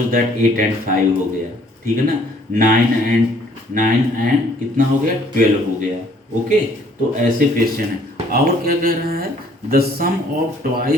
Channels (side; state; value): both; normal; correlation 0.60